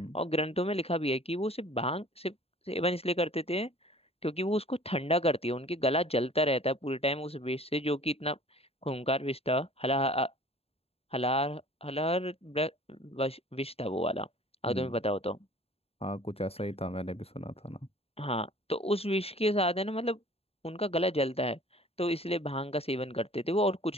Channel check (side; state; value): right; late; 0.29 ms